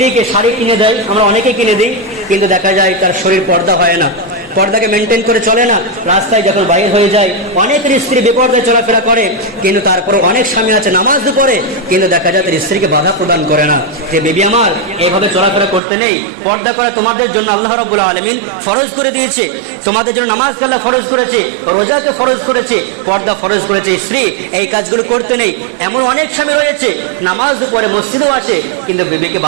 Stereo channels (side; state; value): left; drops out; at 15.8 s